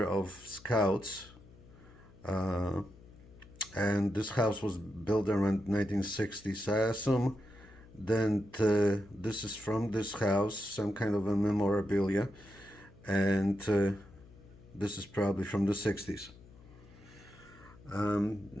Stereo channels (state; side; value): noise; left; hum, 22 dB below the sound